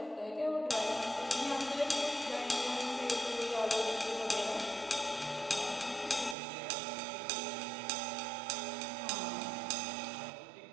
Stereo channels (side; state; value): left; drops out; at 6.4 s